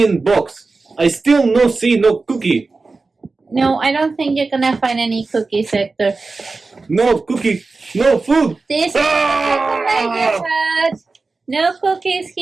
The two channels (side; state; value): left; quieter; 3.8 dB